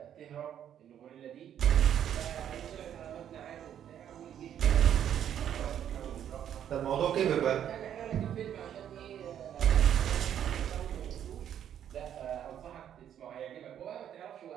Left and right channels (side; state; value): left; quieter; 9.9 dB